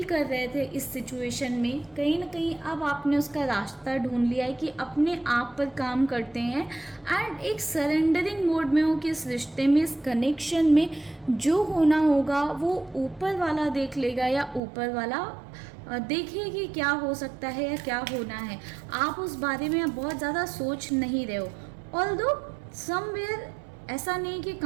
कर रहे थे इस सिचुएशन में। कहीं ना कहीं अब आपने उसका रास्ता ढूंढ लिया है कि अपने आप पर काम करते हैं एंड एक सरेंडरिंग मोड में हो कि इस रिश्ते में, इस कनेक्शन में जो होना होगा वो ऊपर वाला देख लेगा, या ऊपर वाला देखिए कि क्या हो सकता है या क्या होना है। आप उस बारे में अब बहुत ज़्यादा सोच नहीं रहे हो। ऑल्दो समवेयर ऐसा नहीं कि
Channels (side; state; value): left; drops out; at 14.6 s